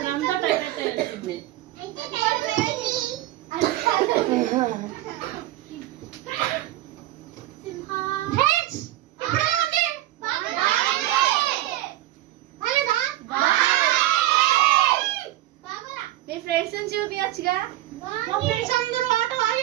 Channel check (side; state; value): left; quieter; 15.4 dB